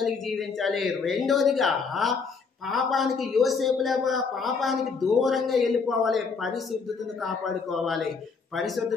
జీవించాలి. రెండోదిగా పాపానికి యోసేపులేగా పాపానికి దూరంగా వెళ్ళిపోవాలి, పరిశుద్ధతను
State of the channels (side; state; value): right; quieter; 5.0 dB